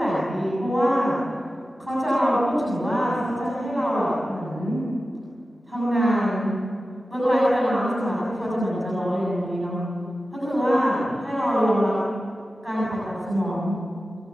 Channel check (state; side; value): normal; both; correlation 0.94